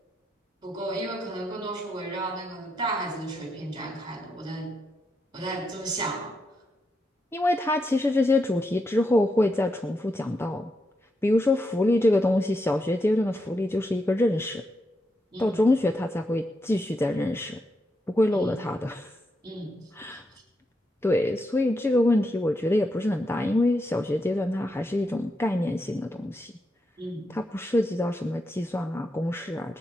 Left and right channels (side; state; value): both; normal; correlation 0.83